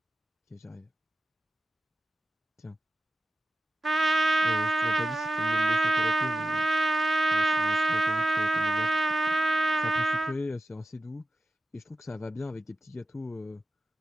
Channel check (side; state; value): both; normal; correlation 0.90